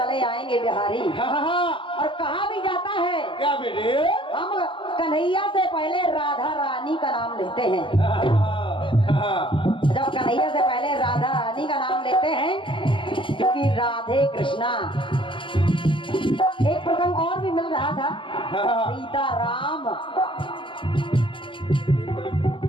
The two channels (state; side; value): late; right; 0.25 ms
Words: आएंगे बिहारी, और कहा भी जाता है क्या बेटे? हम कन्हैया से पहले राधा रानी का नाम लेते हैं। जब कन्हैया से पहले राधा रानी का नाम लेते हैं, क्योंकि राधे कृष्णा। एक प्रसंग और भी मिल रहा था, सीता राम।